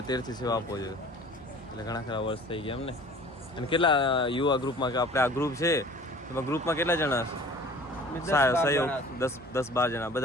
થી સેવા આપો છો, એટલે ઘણા ખરા વર્ષ થઈ ગયા એમને. અને કેટલા યુવા ગ્રુપમાં, કે આપણે આ ગ્રુપ છે એમાં ગ્રુપમાં કેટલા જણા સહયોગ? 10-12 જણા,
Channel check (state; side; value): normal; both; correlation 0.46